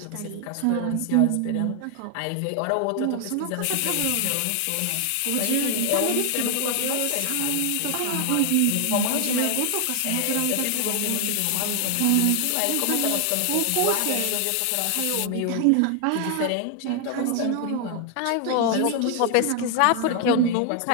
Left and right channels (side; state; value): both; different; correlation 0.00